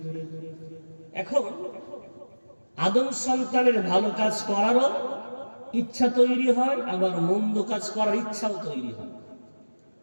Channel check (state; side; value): inverted; both; correlation -1.00